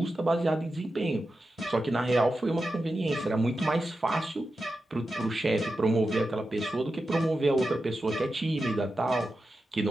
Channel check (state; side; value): normal; both; correlation 0.91